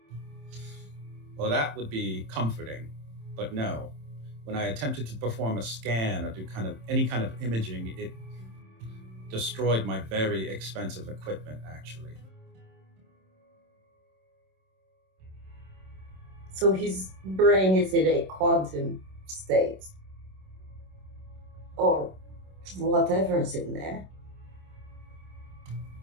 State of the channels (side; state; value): left; late; 26 ms